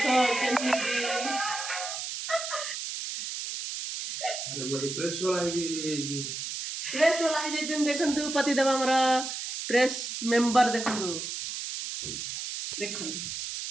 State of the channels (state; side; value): noise; right; hiss, 5 dB below the sound